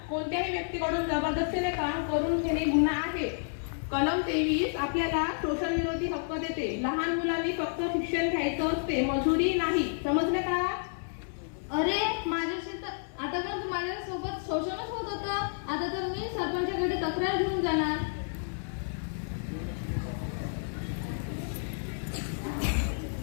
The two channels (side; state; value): right; silent; 58 dB below the other